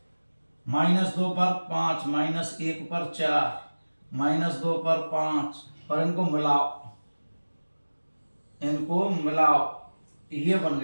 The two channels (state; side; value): inverted; both; correlation -1.00